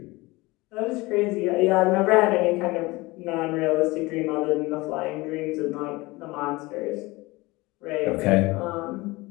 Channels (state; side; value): quieter; right; 22.1 dB